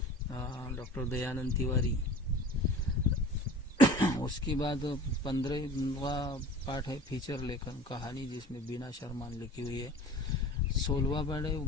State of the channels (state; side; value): normal; both; correlation 0.42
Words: डॉक्टर दयानंद तिवारी। उसके बाद 15वां पाठ है फीचर लेखन कहानी, जिसमें बीना शर्मा ने लिखी हुई है। 16वां पाठ है